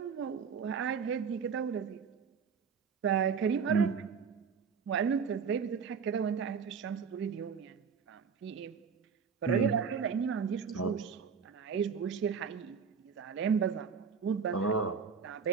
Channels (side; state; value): left; quieter; 6.1 dB